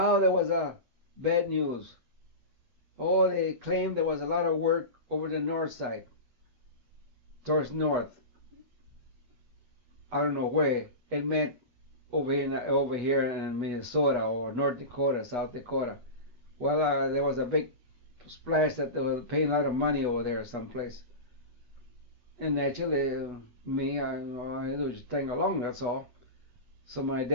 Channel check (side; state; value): left; late; 8.2 ms